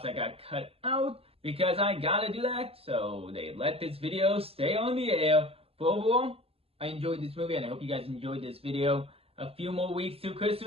that got cut out, because I gotta do that, so they let this video stay on the air. But overall, I enjoyed this movie, and I hope you guys enjoyed this video. A few more weeks to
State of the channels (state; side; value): late; left; 0.28 ms